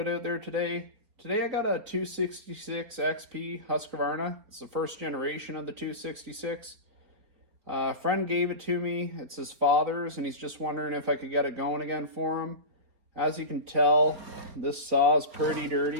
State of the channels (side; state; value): left; late; 4.3 ms